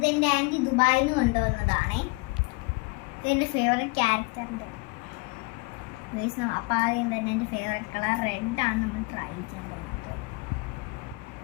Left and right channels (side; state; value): right; quieter; 27.4 dB